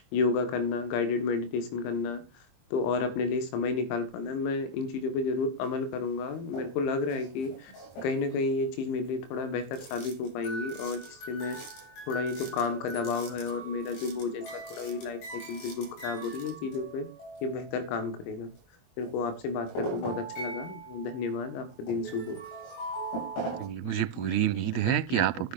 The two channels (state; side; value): late; right; 23 ms